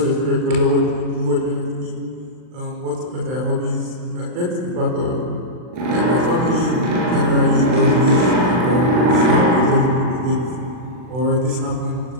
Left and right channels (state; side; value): late; left; 39 ms